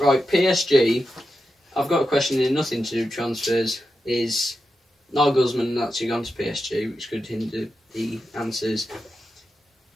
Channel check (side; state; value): both; normal; correlation 0.89